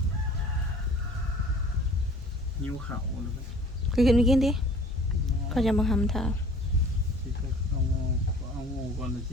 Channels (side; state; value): both; normal; correlation 0.49